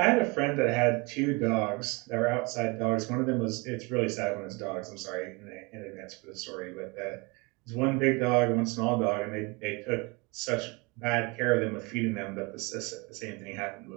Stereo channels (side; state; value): left; quieter; 27.8 dB